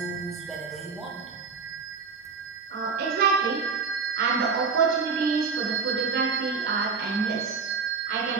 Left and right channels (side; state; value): left; quieter; 5.1 dB